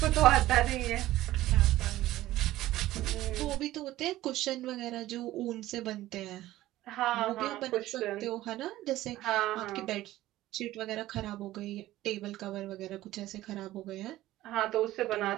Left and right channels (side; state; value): left; quieter; 15.6 dB